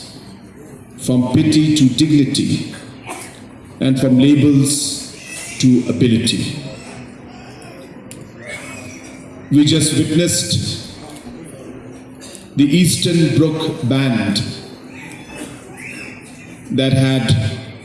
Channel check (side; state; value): both; identical; correlation 1.00